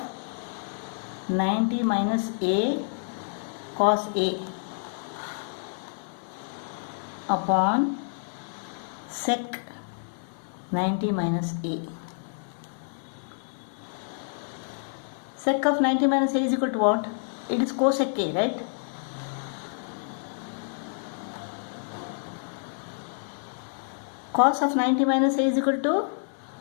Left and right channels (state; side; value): silent; right; 59 dB below the other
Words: 90 minus A cos A upon sec 90 minus A. Sec of 90 minus A is equal to what? It is cosec A, right? Cos of 90 minus A is equal to,